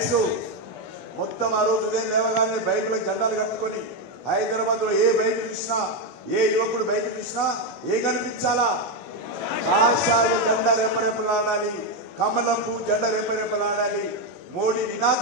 మొత్తం ఆ రోజు ఉదయం లేవగానే బైక్లో జెండాలు కట్టుకొని హైదరాబాద్లో ఏ బైక్ చూసినా, ఏ యువకుడు బైక్ చూసినా ఏ కనిపించాలా? కాషాయ జెండా రెపరెపలాడాలి, కమలం పువ్వు జెండా రెపరెపలాడాలి. మోడీ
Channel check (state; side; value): late; right; 20 ms